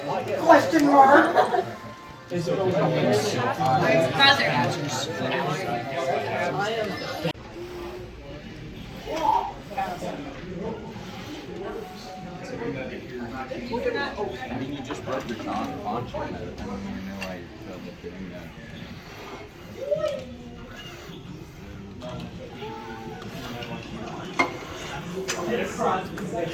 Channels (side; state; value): both; identical; correlation 1.00